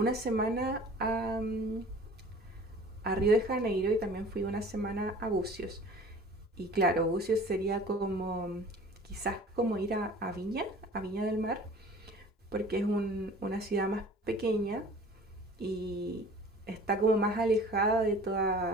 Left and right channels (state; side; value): normal; both; correlation 0.45